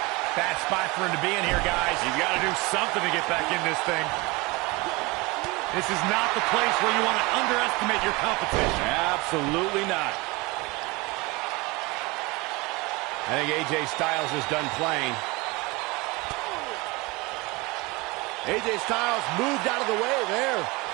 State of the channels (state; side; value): quieter; left; 24.1 dB